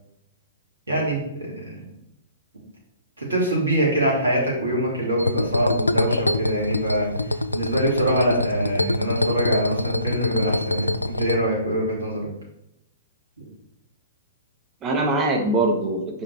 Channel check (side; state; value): both; inverted; correlation -0.55